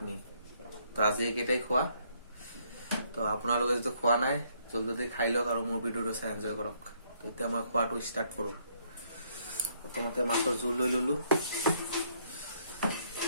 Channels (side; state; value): both; inverted; correlation -0.69